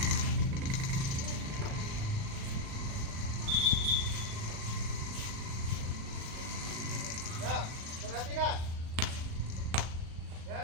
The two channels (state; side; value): late; left; 37 ms